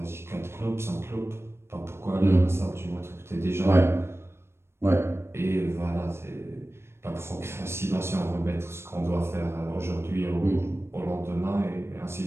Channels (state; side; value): late; left; 0.12 ms